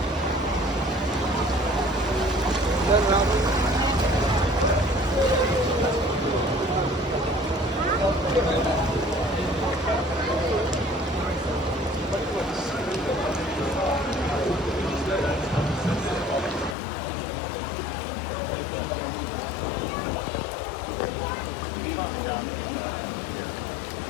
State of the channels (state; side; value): drops out; right; at 16.8 s